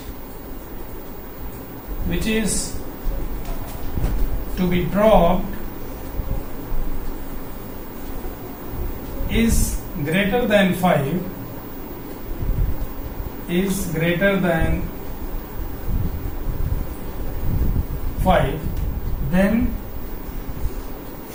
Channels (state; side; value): identical; both; correlation 1.00